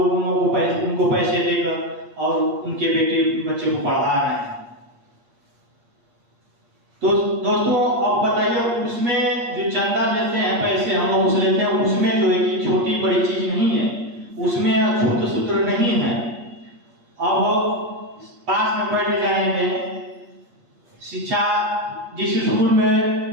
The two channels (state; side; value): late; left; 8.5 ms